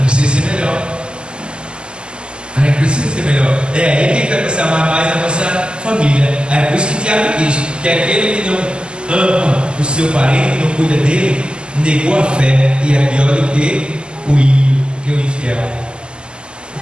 precisa ser melhor. A gente precisa ser melhor. É aí que a gente vai precisar amar mais a nossa família. É por isso que Tiago diz que aquele que não ama o seu parente, não cuida dele, negou a fé e é pior do que o ímpio, que o infiel.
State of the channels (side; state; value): left; late; 0.050 ms